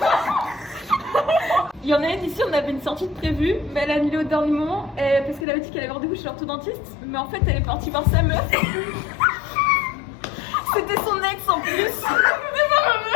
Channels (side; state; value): right; drops out; at 5.5 s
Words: Il y en a une ici, on avait une sortie de prévue, mais elle a annulé au dernier moment parce qu'elle avait dit qu'elle avait rendez-vous chez l'orthodontiste. Mais en fait, elle est partie voir sa meuf. C'était son ex en plus. C'était pas ma